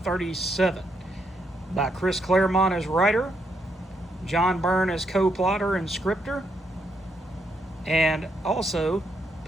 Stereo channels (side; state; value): both; normal; correlation 0.78